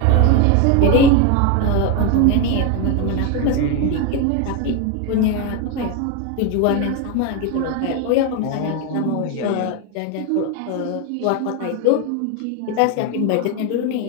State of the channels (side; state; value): both; different; correlation 0.02